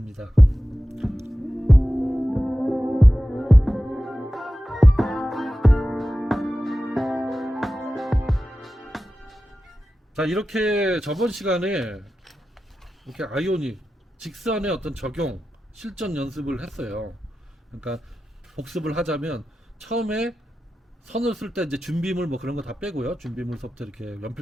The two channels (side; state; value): both; normal; correlation 0.93